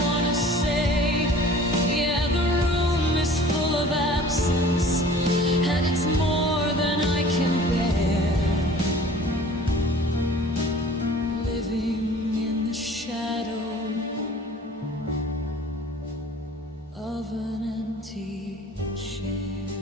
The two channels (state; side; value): normal; both; correlation 0.47